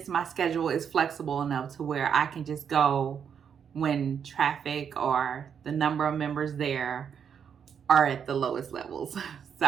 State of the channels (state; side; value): quieter; left; 7.5 dB